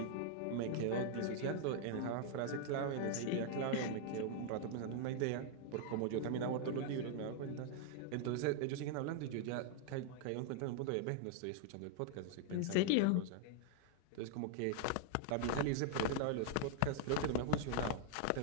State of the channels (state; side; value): different; both; correlation 0.00